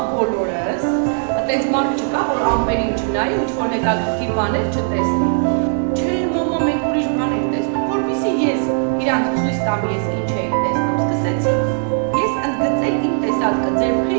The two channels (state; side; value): silent; left; 67 dB below the other